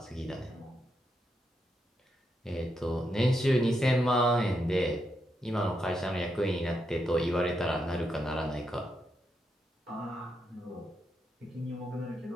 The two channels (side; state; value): both; normal; correlation 0.82